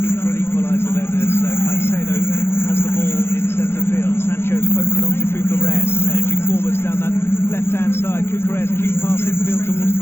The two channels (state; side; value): late; right; 0.12 ms